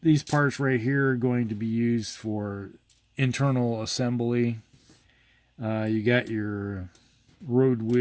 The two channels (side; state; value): both; identical; correlation 1.00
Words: these parts right here are going to be used for internal assembly. You got your road